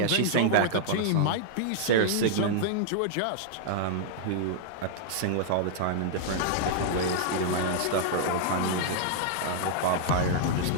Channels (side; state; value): both; different; correlation -0.01